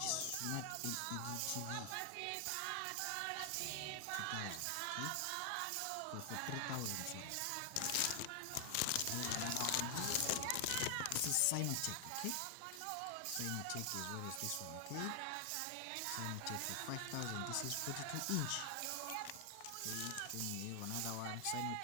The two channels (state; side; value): different; both; correlation 0.00